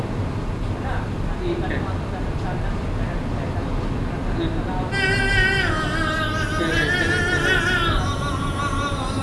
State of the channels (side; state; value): both; identical; correlation 1.00